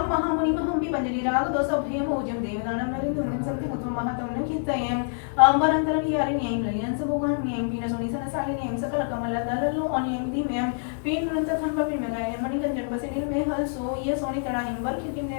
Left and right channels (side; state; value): right; silent; digital silence